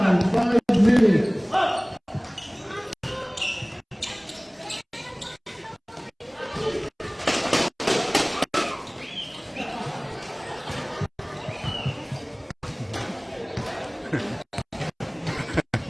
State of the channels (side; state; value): both; identical; correlation 1.00